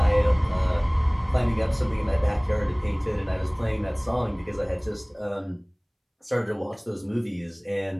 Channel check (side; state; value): both; identical; correlation 1.00